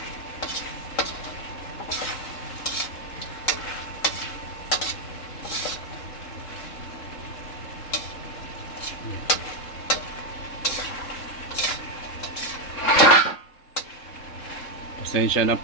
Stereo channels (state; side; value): late; right; 3.7 ms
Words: Yeah. Pasensya na